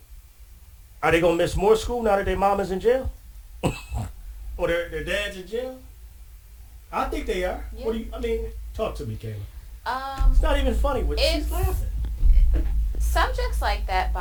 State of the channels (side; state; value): both; identical; correlation 1.00